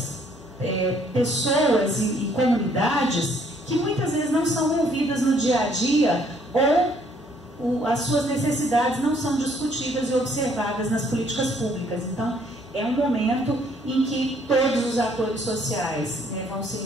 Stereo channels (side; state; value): both; normal; correlation 0.64